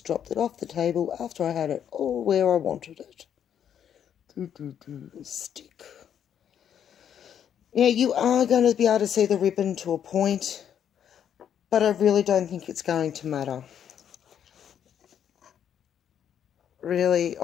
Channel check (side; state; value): right; quieter; 9.1 dB